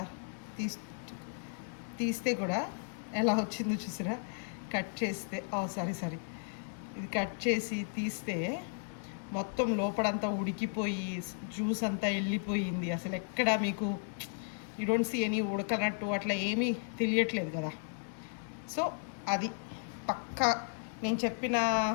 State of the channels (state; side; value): silent; right; digital silence